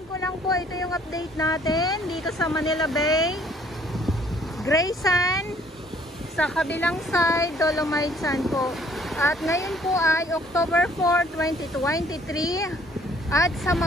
ko lang po, ito yung update natin dito sa Manila Bay. Gray Sand, sa kabilang side, Dolomite Sand po. At ngayon po ay October 4, 2023. At sa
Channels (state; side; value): normal; both; correlation 0.60